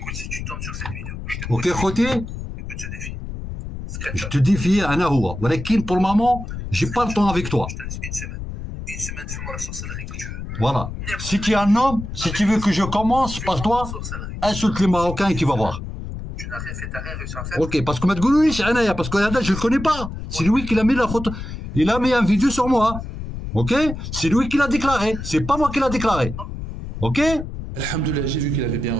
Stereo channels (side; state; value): left; noise; rumble, 8 dB below the sound